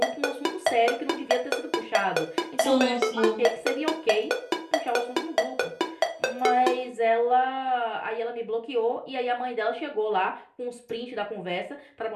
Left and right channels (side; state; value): both; identical; correlation 1.00